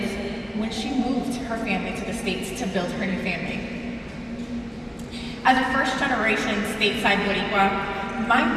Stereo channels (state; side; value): identical; both; correlation 1.00